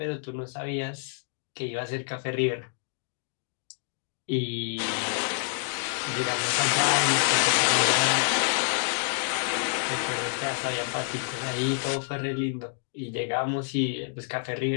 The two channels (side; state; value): right; silent; 59 dB below the other